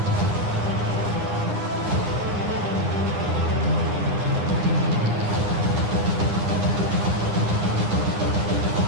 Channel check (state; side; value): late; left; 9.8 ms